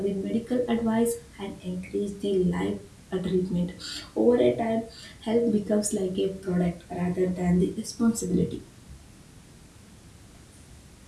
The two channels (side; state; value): both; identical; correlation 1.00